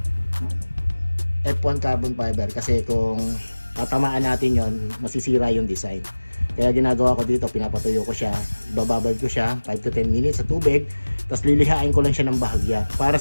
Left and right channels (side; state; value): both; inverted; correlation -1.00